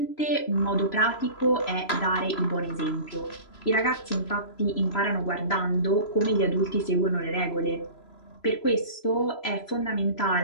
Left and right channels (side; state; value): right; late; 3.0 ms